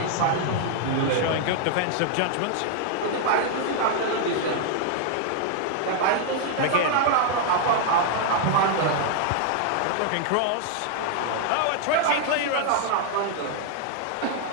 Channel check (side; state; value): both; different; correlation 0.00